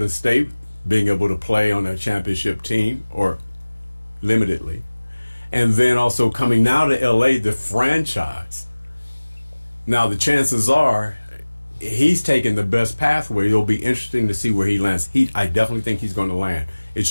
State, being able to play on a championship team, or limitedly, and then also coming now to LA, the franchise. Now, the chances are he's taking the best pathway. It'll be interesting to see where he lands. I definitely think he's going to land. It's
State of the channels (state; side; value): inverted; both; correlation -1.00